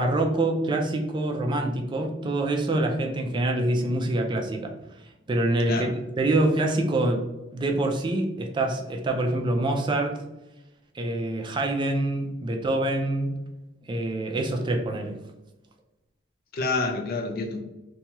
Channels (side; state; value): both; normal; correlation 0.60